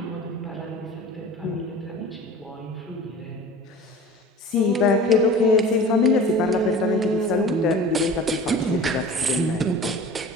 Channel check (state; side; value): normal; both; correlation 0.40